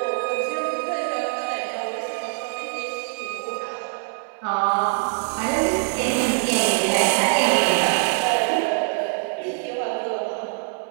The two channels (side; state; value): left; silent; 61 dB below the other